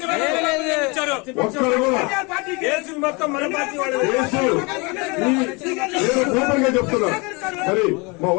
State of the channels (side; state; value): right; quieter; 28.6 dB